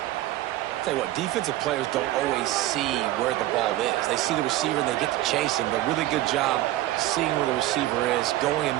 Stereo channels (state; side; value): quieter; left; 15.5 dB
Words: Tell you what, defensive players don't always see where the ball is. They see the receiver and they get to chase him, but really good job seeing where the receiver is, going and